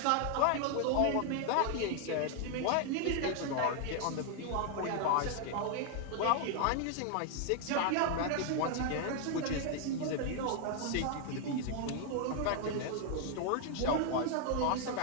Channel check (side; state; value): both; different; correlation 0.00